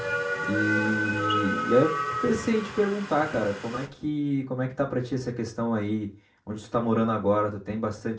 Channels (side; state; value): both; identical; correlation 1.00